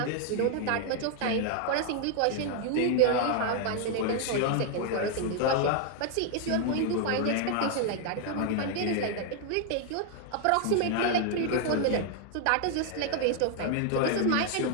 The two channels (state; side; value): different; both; correlation 0.00